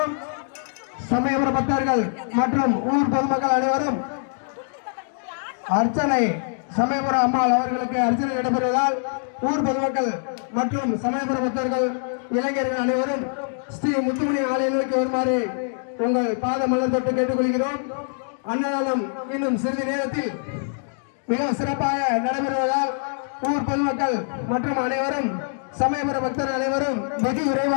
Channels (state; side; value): silent; right; digital silence